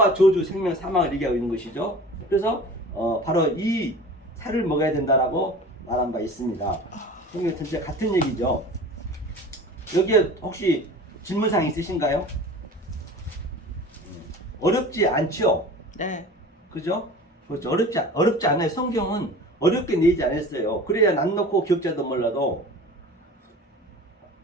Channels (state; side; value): normal; both; correlation 0.39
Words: 저주, 생명, 사망을 얘기하고 있는 것이죠. 그래서 바로 이 살을 먹어야 된다라고 말한 바 있습니다. 성경 전체 같은 얘기죠. 여기에 혹시 질문사항 있으신가요? 어렵지 않죠? 네. 그죠? 그렇죠. 어렵지 않아요. 성경은 어렵게 내지 않았어요. 그래야 난 놓고 기억자도 몰라도